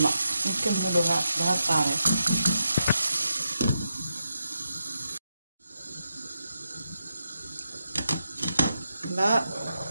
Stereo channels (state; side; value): inverted; both; correlation -0.85